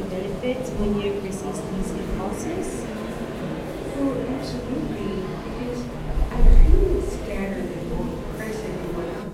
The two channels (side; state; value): both; identical; correlation 1.00